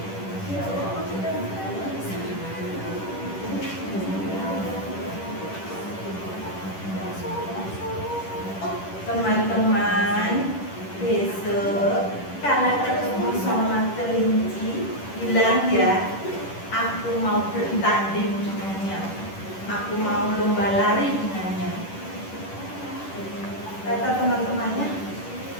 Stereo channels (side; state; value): right; late; 10 ms